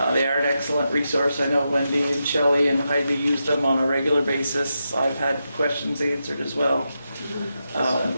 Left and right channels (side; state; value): both; inverted; correlation -0.87